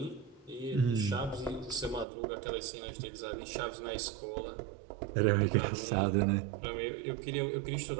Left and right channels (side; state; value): left; drops out; at 2.1 s